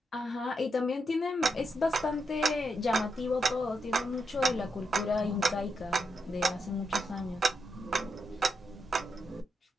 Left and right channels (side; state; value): both; normal; correlation 0.83